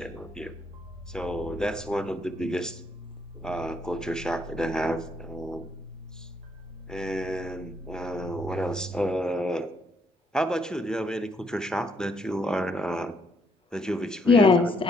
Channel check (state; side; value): normal; both; correlation 0.72